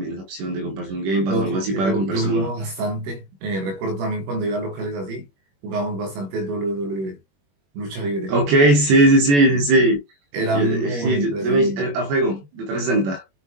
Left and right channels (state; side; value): late; left; 21 ms